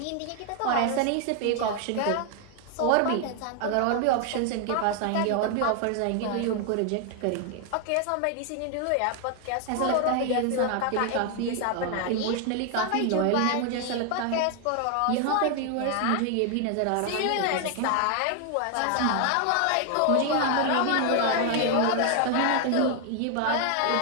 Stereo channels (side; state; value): both; different; correlation 0.00